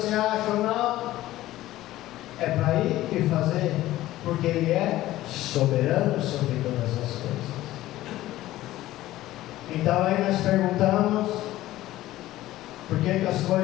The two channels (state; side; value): quieter; right; 15.5 dB